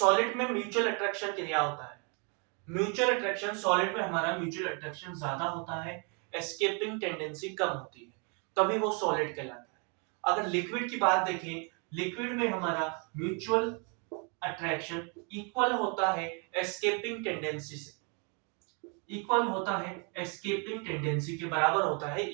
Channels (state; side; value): quieter; left; 36.1 dB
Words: में म्यूचुअल अट्रैक्शन क्रिया होता है। म्यूचुअल अट्रैक्शन सॉलिड में हमारा म्यूचुअल अट्रैक्शन ज्यादा होता है, एस्केपिंग टेंडेंसी कम होती है, तभी वो सॉलिड कहलाता है। अगर लिक्विड की बात देखें, लिक्विड में हमारा म्यूचुअल अट्रैक्शन इक्वल होता है एस्केपिंग टेंडेंसी से, इक्वल होता है एस्केपिंग टेंडेंसी के बराबर होता है,